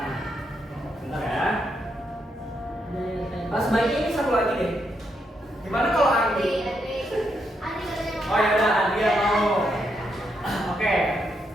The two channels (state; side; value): normal; both; correlation 0.79